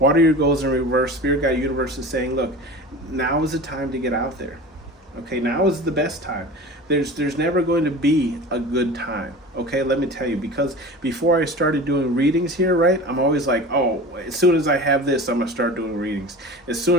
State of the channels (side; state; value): both; normal; correlation 0.35